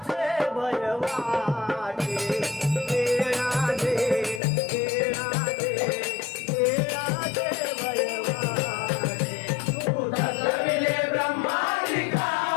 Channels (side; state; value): right; drops out; at 4.4 s